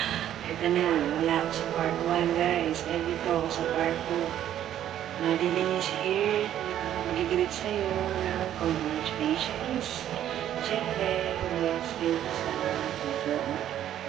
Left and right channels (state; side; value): quieter; left; 11.3 dB